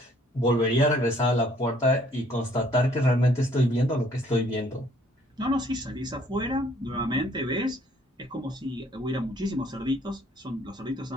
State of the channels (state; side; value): normal; both; correlation 0.61